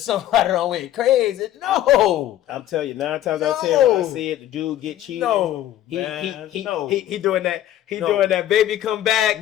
done went crazy. No. I'm telling you, 9 times out of 10, when I see it, the dude get cheated. No, he doing that. He No. doing that baby come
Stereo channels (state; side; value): quieter; right; 12.7 dB